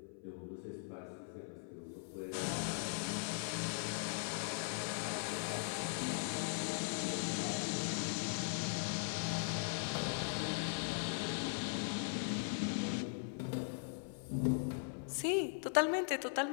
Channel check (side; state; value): right; silent; 51 dB below the other